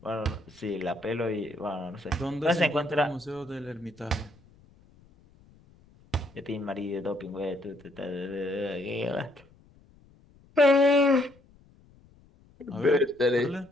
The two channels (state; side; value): noise; left; rumble, 28 dB below the sound